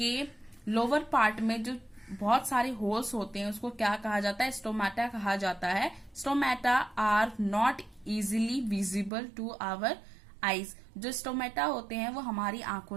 लोअर पार्ट में जो बहुत सारे होल्स होते हैं उसको क्या कहा जाता है, स्टोमेटा कहा जाता है. Stomata are not easily visible to our eyes. जो स्टोमेटा होते हैं वो हमारी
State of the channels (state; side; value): drops out; left; at 9.1 s